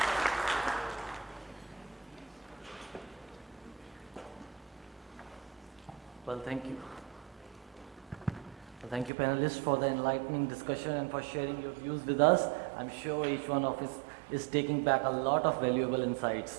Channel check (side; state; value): left; drops out; at 9.1 s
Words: Well, thank you. Well, thank you, panelists, for the enlightening discussion and for sharing your views with us. I'm sure each one of us is taking back a lot of valuable